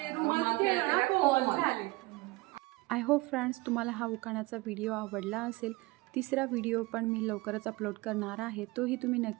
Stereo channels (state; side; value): quieter; left; 22.6 dB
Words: रुमाल खेळलो ना, कोल झाले. आय होप फ्रेंड्स तुम्हाला हा उखाण्याचा व्हिडिओ आवडला असेल. तिसरा व्हिडिओ पण मी लवकरच अपलोड करणार आहे, तोही तुम्ही